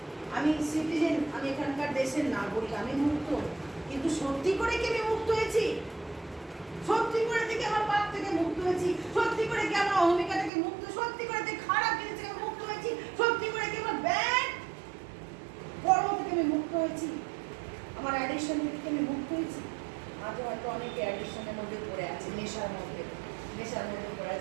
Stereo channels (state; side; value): drops out; left; at 10.5 s